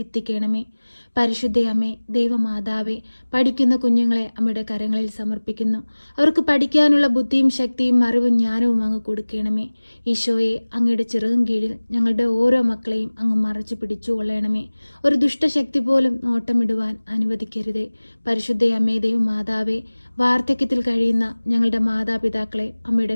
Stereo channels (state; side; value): inverted; both; correlation -1.00